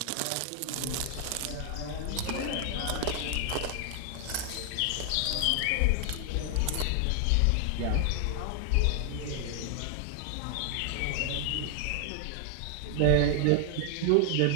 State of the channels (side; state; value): both; different; correlation 0.00